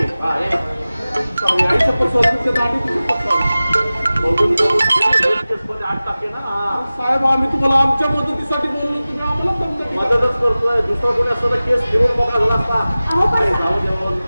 साहेब आम्ही तुम्हाला आमच्या मदतीसाठी बोललो. तुम्ही आम्हाला मदतच करतोय. दुसरा कोणी असतं तर केस फिरून बघा झाला असता. जाऊ द्या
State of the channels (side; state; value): both; inverted; correlation -0.97